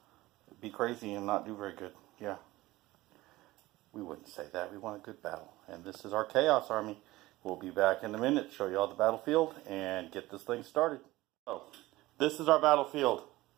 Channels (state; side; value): quieter; left; 18.4 dB